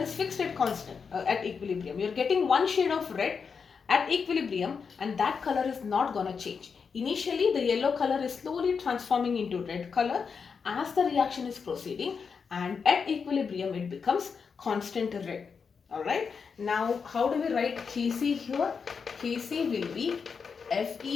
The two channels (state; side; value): quieter; right; 5.8 dB